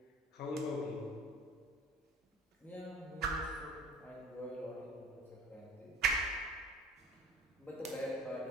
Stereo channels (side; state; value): both; normal; correlation 0.44